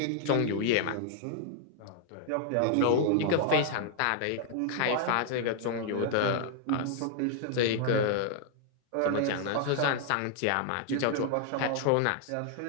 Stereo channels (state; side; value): different; both; correlation 0.00